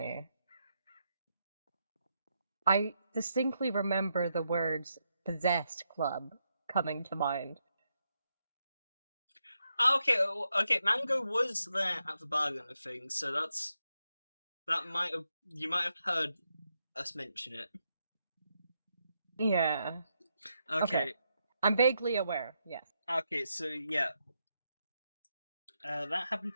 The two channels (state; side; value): inverted; both; correlation -0.82